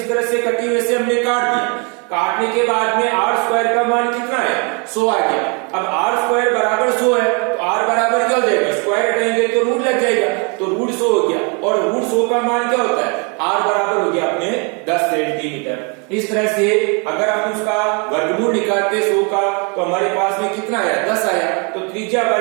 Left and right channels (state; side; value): quieter; left; 34.6 dB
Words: तरह से कटी वैसे हमने काट दिया, काटने के बाद में आर स्क्वायर का मान कितना है, 100 आ गया। अब आर स्क्वायर बराबर 100 है, तो आर बराबर क्या हो जाएगा, स्क्वायर हटाएंगे तो रूट लग जाएगा, तो रूट 100 हो गया और रूट 100 का मान क्या होता है, आर बराबर हो गया अपने 10 सेंटीमीटर। इस तरह से अगर हम उसका वर्गमूल निकालते 100 का तो हमारे पास में कितना आया, 10 आया, तो त्रिज्या